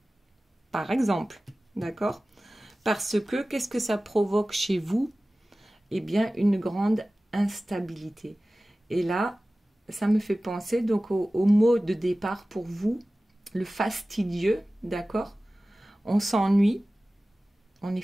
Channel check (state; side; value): normal; both; correlation 0.97